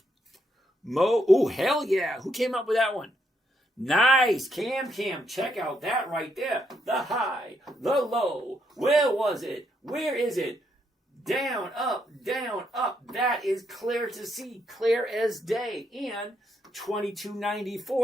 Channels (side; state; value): both; normal; correlation 0.77